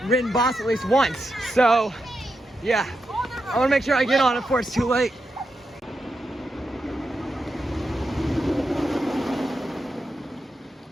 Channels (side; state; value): both; normal; correlation 0.86